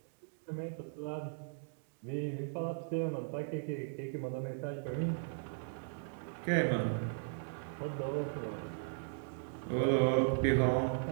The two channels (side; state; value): left; silent; digital silence